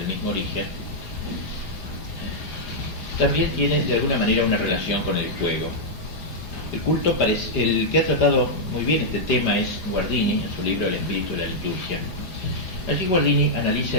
mismo origen, también tiene de alguna manera una relación con el juego. El culto, el que ha tratado muy bien este tema es Guardini, en su libro El espíritu de la liturgia. Allí Guardini analiza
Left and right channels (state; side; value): late; right; 5.0 ms